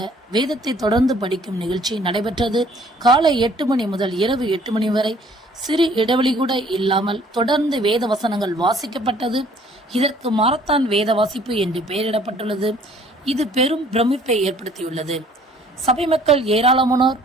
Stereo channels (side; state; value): both; normal; correlation 0.57